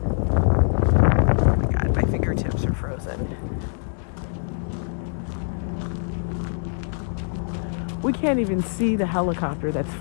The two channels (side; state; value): right; silent; digital silence